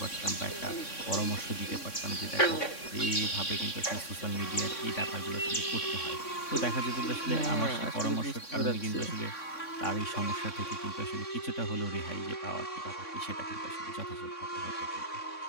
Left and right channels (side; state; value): right; late; 3.6 ms